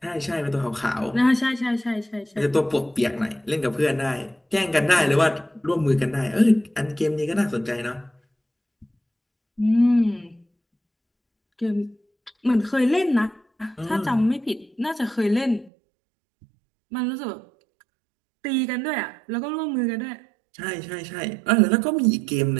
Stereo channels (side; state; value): left; drops out; at 15.7 s